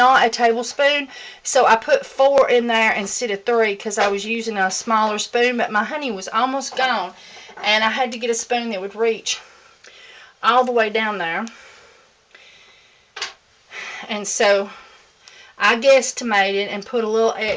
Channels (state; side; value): identical; both; correlation 1.00